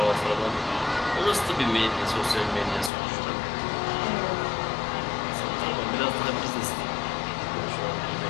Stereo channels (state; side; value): drops out; right; at 2.9 s